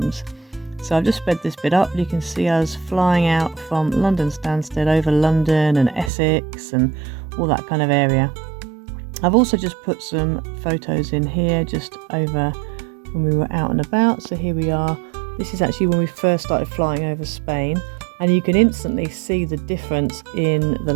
So I've just sped this bit up. You can see us flying out from London Stansted over London and Essex and all that kind of area. I've also just put some photos in here just over when we were out and about. So here we are. This is actually when we first started flying over Spain, and you can instantly see the difference in the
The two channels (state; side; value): drops out; left; at 6.1 s